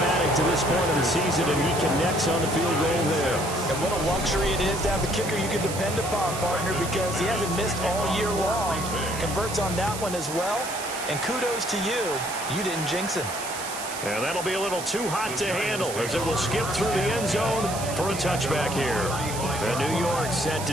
to this point of the season, and he connects on the field goal there. And what a luxury it is to have a kicker you can depend upon, partner, because he hasn't missed all year long. Converts on that one as well. And kudos to you. You didn't jinx him. And that'll be a little too hot to handle as it will skip through the end zone for a touchback here. And New York set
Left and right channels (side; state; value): right; noise; hiss, 9 dB below the sound